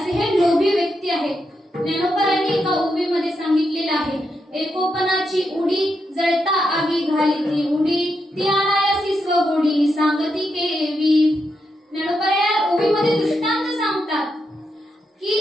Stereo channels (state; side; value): normal; both; correlation 0.83